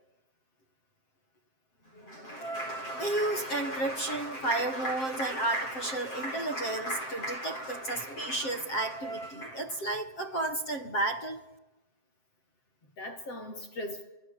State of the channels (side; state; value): right; late; 7.6 ms